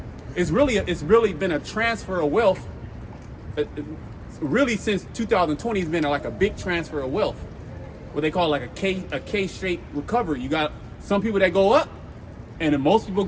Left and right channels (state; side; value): identical; both; correlation 1.00